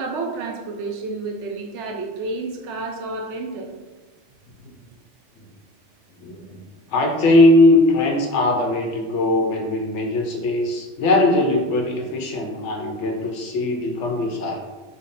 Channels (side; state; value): both; normal; correlation 0.35